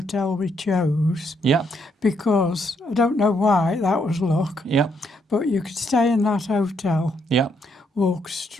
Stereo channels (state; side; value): normal; both; correlation 0.74